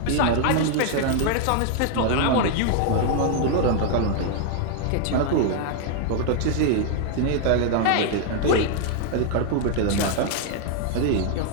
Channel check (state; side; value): different; both; correlation 0.00